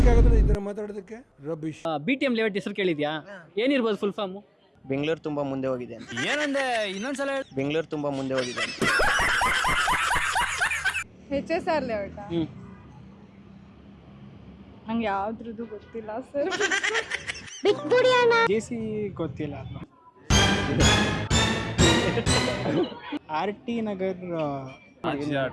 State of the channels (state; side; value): identical; both; correlation 1.00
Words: ಇದರ ಮಾತಾಡೋದಕ್ಕೆ ರಬೀಶ್. BTM ಲೇಔಟ್ ಹೆಸರು ಕೇಳಿದ್ಯಾ? ಏನಿರ್ಬೋದು ಫುಲ್ ಫಾರ್ಮ್? ಬೆಂಗಳೂರು ತುಂಬಾ ಮುಂದೆ ಹೋಗಿದೆ ಅಂತ. ಏನಂದೆ ಇನ್ನೊಂದ್ಸಲ ಹೇಳಿ. ಬೆಂಗಳೂರು ತುಂಬಾ ಮುಂದೆ ಹೋಗಿದೆ ಅಂತ. HSR layout. ನಂಗೆ ಯಾವ್ದ್ರದ್ದು ಗೊತ್ತಿಲ್ಲ ಸರ್. JC ಗೊತ್ತಿಲ್ಲ. RT ನಗರ್ ಆಚಿಯಾ